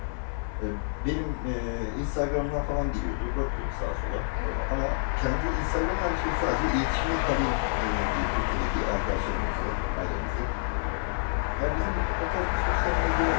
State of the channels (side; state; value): right; silent; digital silence